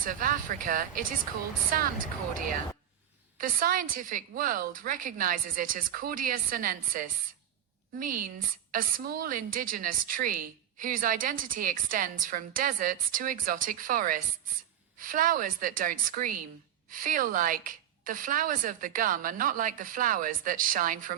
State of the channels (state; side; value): quieter; left; 10.2 dB